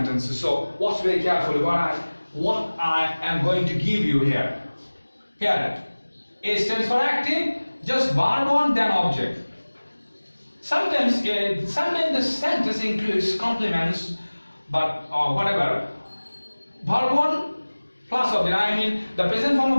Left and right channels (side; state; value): both; inverted; correlation -1.00